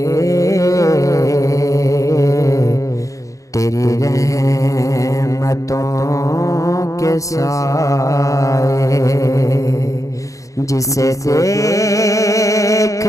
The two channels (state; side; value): late; right; 0.16 ms